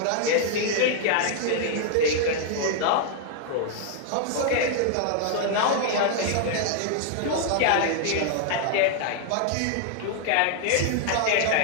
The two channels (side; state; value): both; different; correlation 0.00